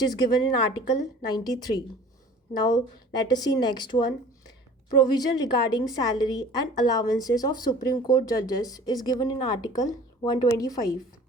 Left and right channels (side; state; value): both; normal; correlation 0.46